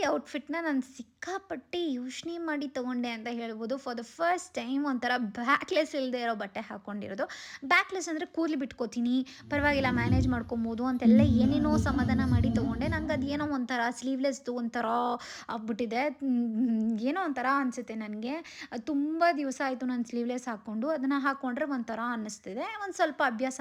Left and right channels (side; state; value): both; identical; correlation 1.00